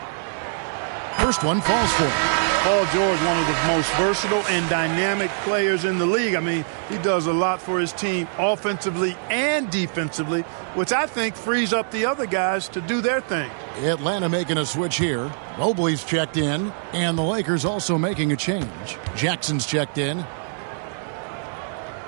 First one falls for him. Paul George, one of the most versatile and dynamic players in the league. I mean, he does a lot for his team offensively and defensively, which I think frees up the other guys to do their thing. Atlanta making a switch here. Mobley's checked in, and the Lakers also making a change. Jackson's checked in.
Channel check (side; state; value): left; silent; digital silence